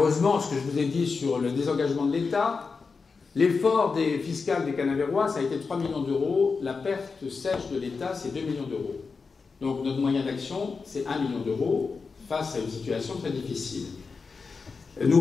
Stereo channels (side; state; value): right; quieter; 4.8 dB